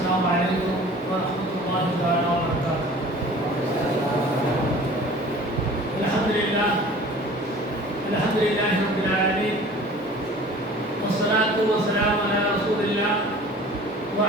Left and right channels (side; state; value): both; normal; correlation 0.45